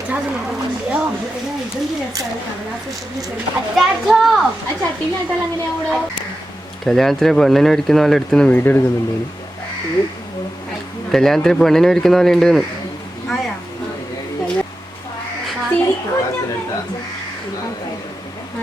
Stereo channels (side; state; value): both; normal; correlation 0.91